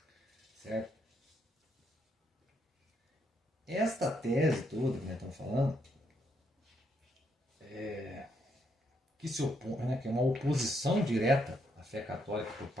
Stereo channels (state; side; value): normal; both; correlation 0.75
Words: Certo? Esta tese toda que nós estamos falando, que se opõe, né, que é uma oposição direta à fé católica por